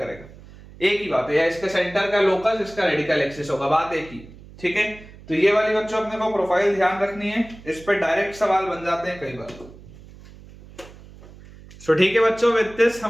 एक ही बात है, या इसके सेंटर का लोकस इसका रेडिकल एक्सिस होगा, बात एक ही. ठीक है, तो ये वाली बच्चों अपने को प्रोफाइल ध्यान रखनी है, इस पे डायरेक्ट सवाल बन जाते हैं कई बार. तो ठीक है बच्चों, विद दिस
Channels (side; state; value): right; noise; hum, 20 dB below the sound